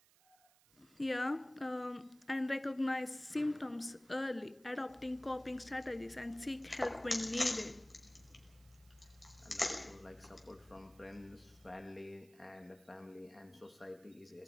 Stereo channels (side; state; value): right; noise; hiss, 28 dB below the sound